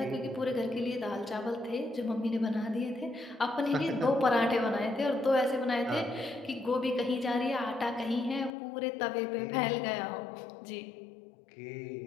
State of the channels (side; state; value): right; drops out; at 8.5 s